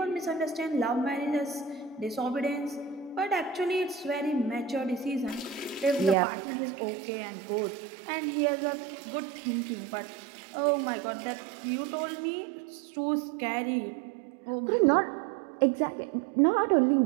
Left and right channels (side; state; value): left; drops out; at 6.2 s